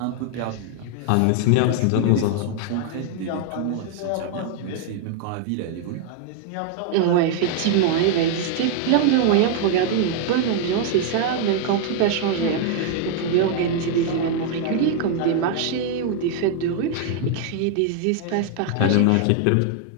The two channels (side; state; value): both; different; correlation 0.00